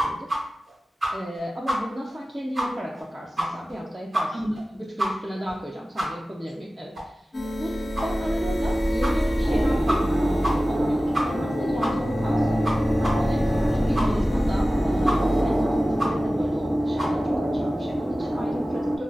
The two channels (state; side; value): normal; both; correlation 0.96